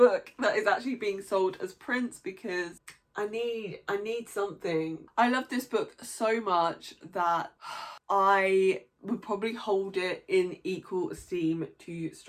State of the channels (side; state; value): both; identical; correlation 1.00